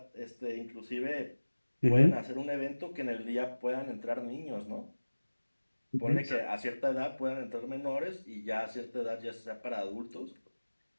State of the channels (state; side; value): inverted; both; correlation -1.00